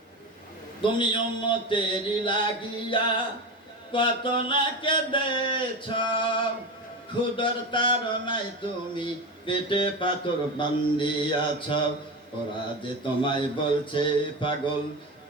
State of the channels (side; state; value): both; normal; correlation 0.22